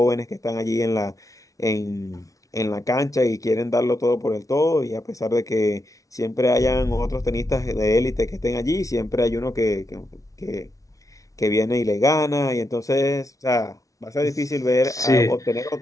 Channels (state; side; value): late; right; 0.17 ms